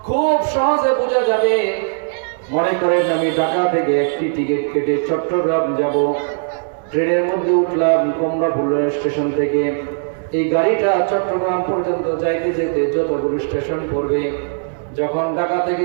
খুব সহজে বোঝা যাবে। মনে করেন আমি ঢাকা থেকে একটি টিকিট কেটে চট্টগ্রাম যাব, ট্রেনের মধ্যে উঠলাম কমলাপুর স্টেশন থেকে। এই গাড়িটা চট্টগ্রাম পর্যন্ত যাইতে যেতে যতগুলো স্টেশন পড়বে, যখন ঢাকা থেকে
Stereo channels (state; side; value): silent; left; digital silence